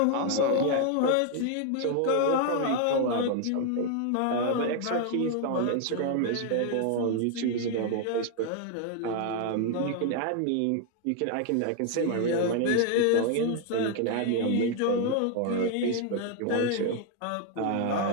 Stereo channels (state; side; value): different; both; correlation 0.00